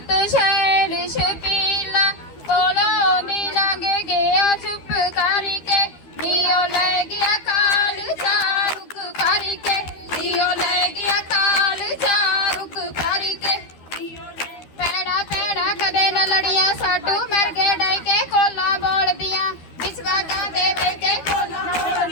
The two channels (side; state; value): right; late; 12 ms